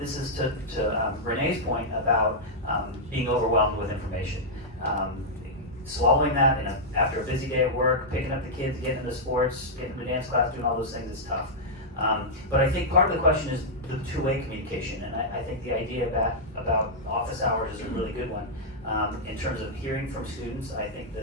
is to Renee's point about being overwhelmed with information. Swallowing that after a busy day at work, picking up the kids, getting into sports, getting into dance class, doing all those things is tough. But I think part of the question is the two-way communication, and I think the idea about office hours is a really good one. In terms of hearing from students, I think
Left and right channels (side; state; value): both; normal; correlation -0.08